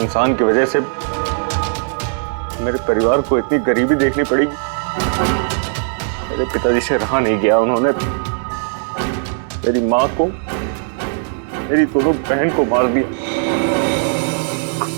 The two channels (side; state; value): left; silent; 67 dB below the other